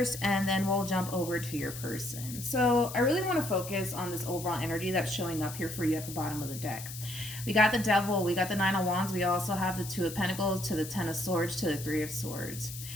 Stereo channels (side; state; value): left; noise; hiss, 11 dB below the sound